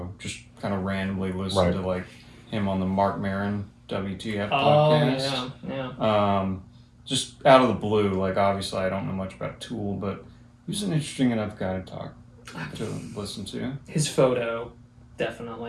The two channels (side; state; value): both; identical; correlation 1.00